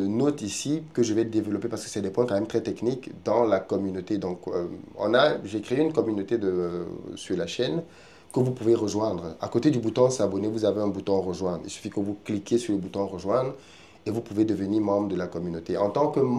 notes ici que je vais développer parce que c'est des points quand même très techniques dans la communauté. Donc, j'ai créé une communauté sur la chaîne que vous pouvez rejoindre. À côté du bouton s'abonner, vous avez un bouton rejoindre. Il suffit que vous cliquez sur le bouton rejoindre et vous pouvez devenir membre de la communauté. En tant que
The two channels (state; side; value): identical; both; correlation 1.00